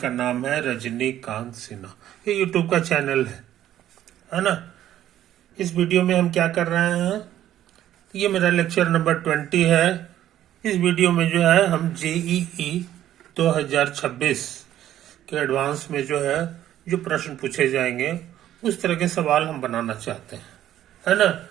नाम है रजनीकांत सिन्हा। ये यूट्यूब का चैनल है ना। इस वीडियो में हम क्या कर रहे हैं, ये मेरा लेक्चर नंबर 20 है। इस वीडियो में जो है हम JEE 2026 के एडवांस में जो है जो प्रश्न पूछे जाएंगे उस तरह के सवाल हम बनाना चाहते हैं, है ना।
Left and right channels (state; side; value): quieter; left; 12.1 dB